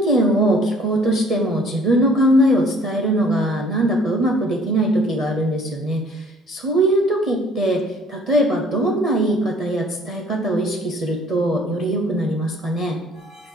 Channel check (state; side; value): normal; both; correlation 0.56